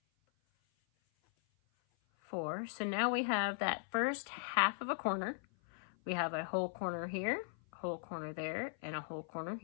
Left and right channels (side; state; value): right; silent; 52 dB below the other